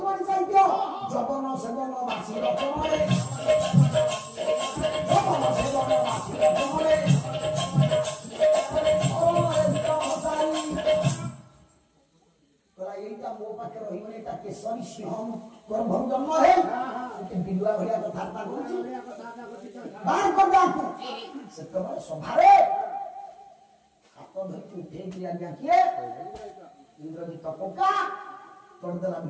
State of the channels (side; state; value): both; identical; correlation 1.00